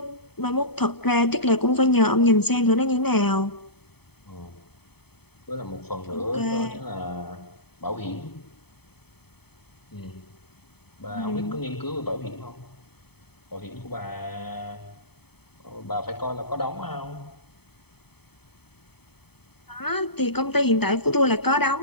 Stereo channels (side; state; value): right; late; 0.97 ms